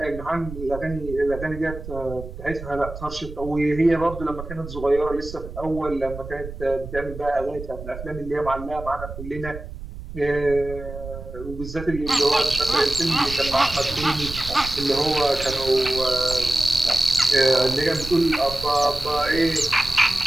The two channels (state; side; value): noise; right; rumble, 11 dB below the sound